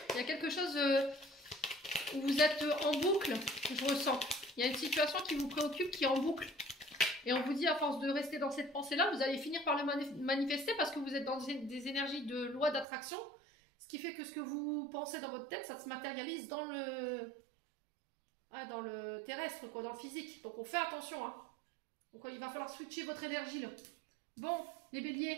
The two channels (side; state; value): left; drops out; at 12.9 s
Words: Il y a quelque chose où vous êtes en boucle, je ressens. Il y a une situation qui vous préoccupe, qui est en boucle. Et on vous dit à force de rester dans cette pensée là, vous allez finir par le manifester parce que vous êtes dans des énergies de loi d'attraction. Ce qui fait que ce que vous pensez dans votre tête, ça se matérialise dans le terrestre, quoi, dans le physique. Donc on fait attention. Hein. Donc il va falloir switcher votre énergie là. Bon, les